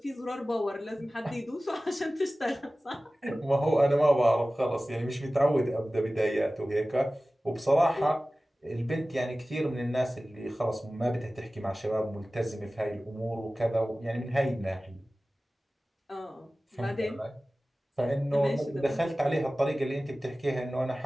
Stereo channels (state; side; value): normal; both; correlation 0.97